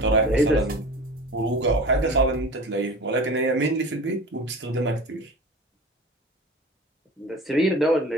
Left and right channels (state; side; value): normal; both; correlation 0.36